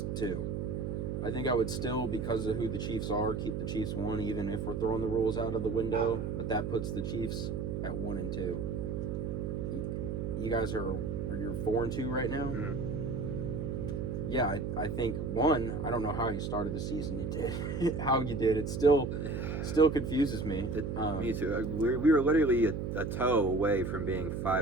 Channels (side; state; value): right; noise; hum, 2 dB below the sound